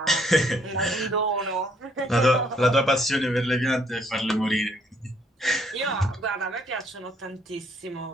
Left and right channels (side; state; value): both; normal; correlation 0.67